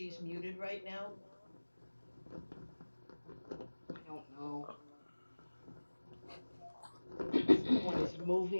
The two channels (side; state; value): both; inverted; correlation -1.00